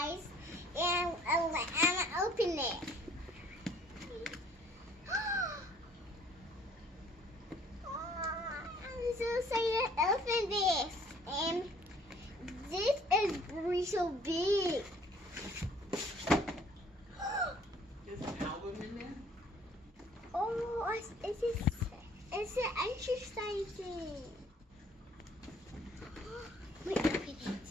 and I'm gonna open it. I'm so excited to open this, and this is really so big. There's an album in there? Oh, it's an exercising. Wait, open it.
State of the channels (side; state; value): both; normal; correlation 0.57